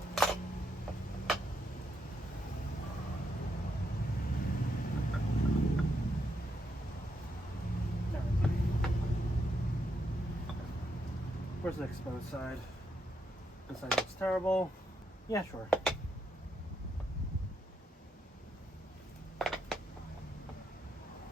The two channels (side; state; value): both; normal; correlation 0.80